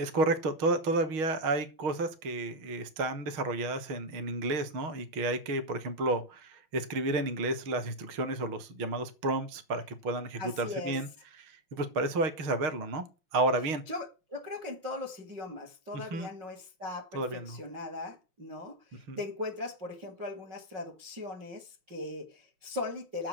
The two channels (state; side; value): late; left; 6.4 ms